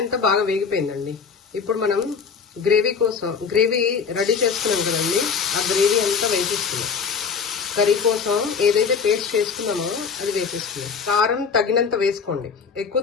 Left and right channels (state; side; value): quieter; right; 5.9 dB